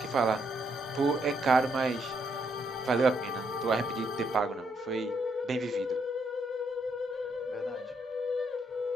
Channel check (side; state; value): both; normal; correlation 0.75